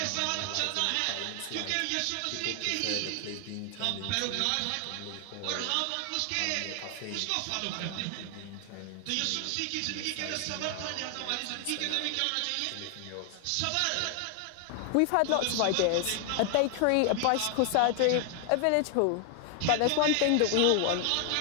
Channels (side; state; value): both; different; correlation 0.00